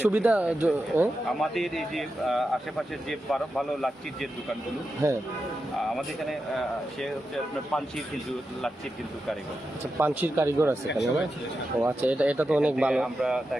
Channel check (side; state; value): both; normal; correlation 0.89